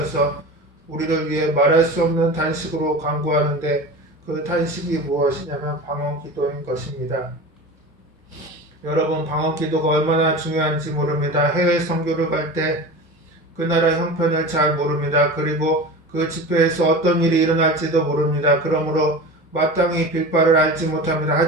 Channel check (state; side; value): normal; both; correlation 0.32